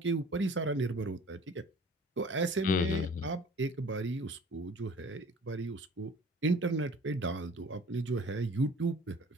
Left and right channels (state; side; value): normal; both; correlation 0.47